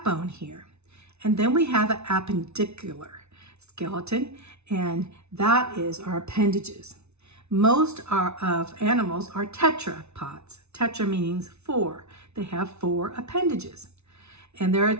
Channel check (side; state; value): left; late; 0.81 ms